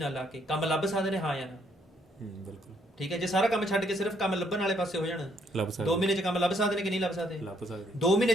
ਲਾ ਕੇ ਕੰਮ ਲੱਭ ਸਕਦੇ ਨੇ, ਹਾਂ ਜਾਂ ਨਾ? ਬਿਲਕੁਲ, ਠੀਕ ਹੈ। ਜੇ ਸਾਰਾ ਕੰਮ ਛੱਡ ਕੇ ਸਿਰਫ ਕੰਮ ਲੱਭਣ ਵਾਲੇ ਪਾਸੇ ਹੋ ਜਾਣ, 2 ਮਹੀਨੇ 'ਚ ਕੰਮ ਲੱਭ ਸਕਦੇ ਨੇ ਕਿ ਨਹੀਂ ਲੱਭ ਸਕਦੇ? 2 ਮਹੀਨੇ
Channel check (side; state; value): both; normal; correlation 0.69